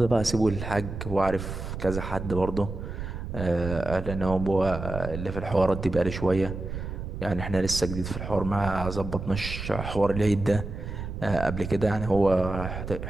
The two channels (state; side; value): noise; right; rumble, 7 dB below the sound